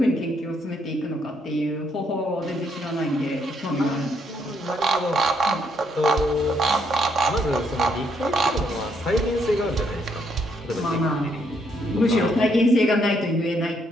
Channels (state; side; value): normal; both; correlation 0.73